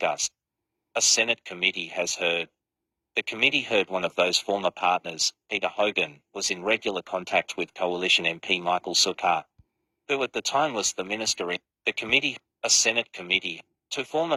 A Senate committee has heard. The committee heard one of those former partners, Peter Hogan, was in regular contact with Coalition MP Michael Sukkar, who at the time was the minister in the committee. A Senate committee. Two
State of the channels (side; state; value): both; identical; correlation 1.00